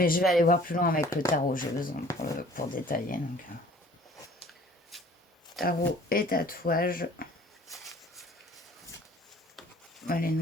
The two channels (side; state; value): both; normal; correlation 0.52